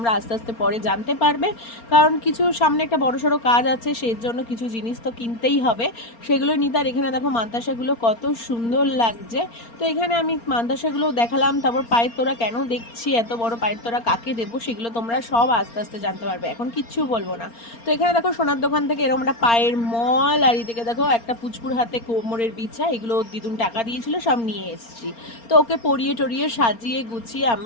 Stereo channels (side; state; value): right; late; 4.3 ms